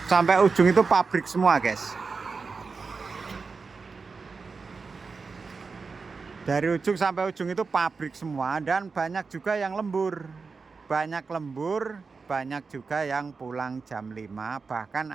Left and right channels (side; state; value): left; quieter; 4.7 dB